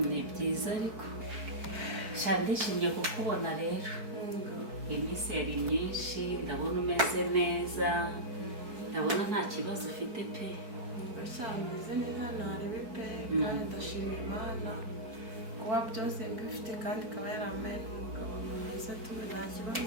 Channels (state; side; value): late; left; 4.6 ms